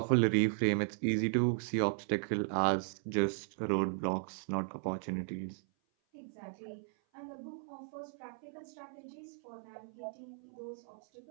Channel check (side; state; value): left; silent; 54 dB below the other